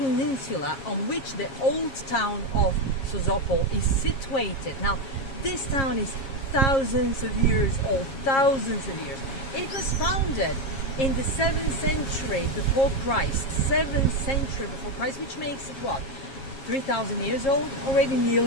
on which the old town of Sozopol is situated. Now this town is thousands of years old, thousands of years. It was founded in the 7th century before Christ, 7th century before Christ, which makes it what? 3,000 years old already,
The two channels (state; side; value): late; right; 7.4 ms